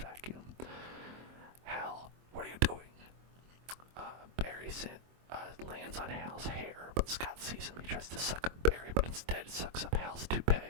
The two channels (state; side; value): late; left; 24 ms